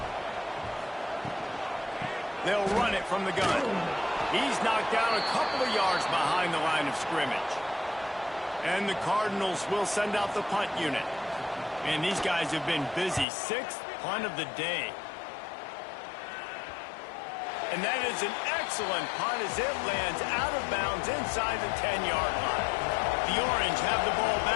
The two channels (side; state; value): right; drops out; at 13.2 s